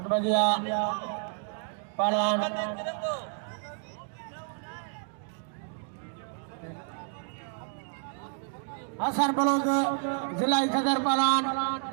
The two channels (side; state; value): left; silent; 58 dB below the other